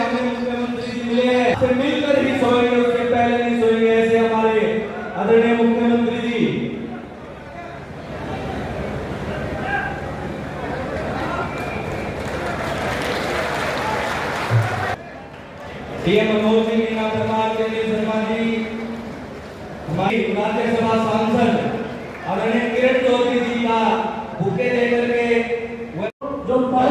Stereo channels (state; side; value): identical; both; correlation 1.00